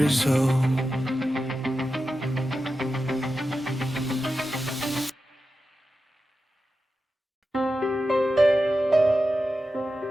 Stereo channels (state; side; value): normal; both; correlation 0.91